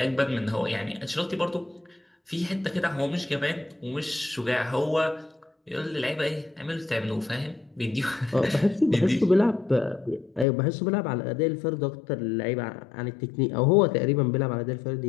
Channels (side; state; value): right; drops out; at 10.5 s